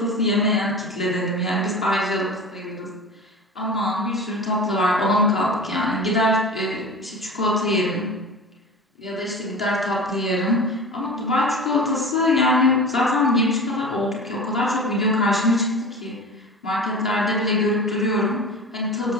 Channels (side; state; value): both; normal; correlation 0.33